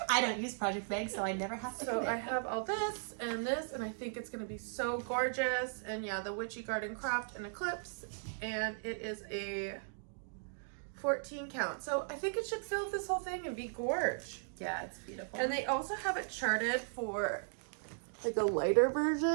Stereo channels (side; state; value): left; silent; digital silence